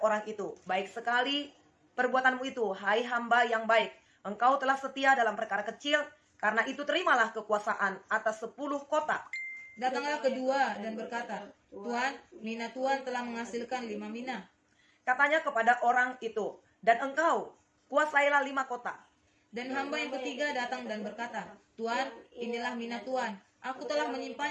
itu, "Baik sekali perbuatanmu itu, hai hamba yang baik. Engkau telah setia dalam perkara kecil, karena itu terimalah kekuasaan atas 10 kota." Datanglah kedua dan berkata, "Tuan, mina tuan telah menghasilkan 5 mina." Katanya kepada orang itu, "Dan engkau, kuasailah 5 kota." Dan hamba yang ketiga datang dan berkata, "Tuan, inilah mina tuan. Aku telah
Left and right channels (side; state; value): both; identical; correlation 1.00